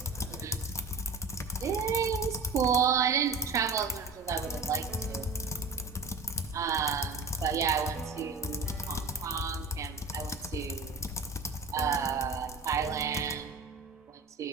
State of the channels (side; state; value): left; quieter; 4.0 dB